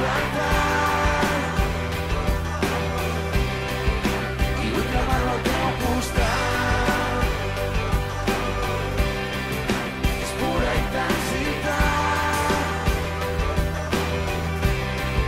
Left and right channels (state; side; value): identical; both; correlation 1.00